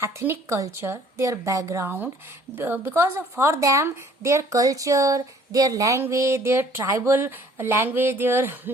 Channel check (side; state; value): both; normal; correlation 0.56